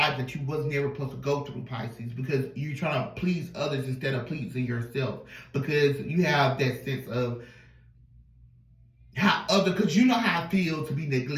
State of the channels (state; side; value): identical; both; correlation 1.00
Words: that you was never supposed to go through, Pisces, because you're trying to please others instead of pleasing yourself. Because you have that sense of because you know how it feels to be